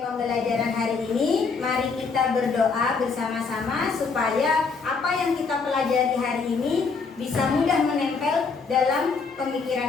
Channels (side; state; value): right; quieter; 4.9 dB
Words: pembelajaran hari ini, mari kita berdoa bersama-sama supaya apa yang kita pelajari hari ini bisa mudah menempel dalam